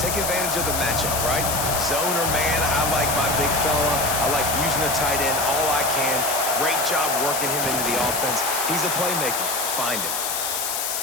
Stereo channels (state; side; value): noise; left; hiss, 1 dB below the sound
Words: Take advantage of the matchup, right? Zone or man, I like my big fella. I like using the tight end all I can. Great job working him into the offense. He's a playmaker. Find him.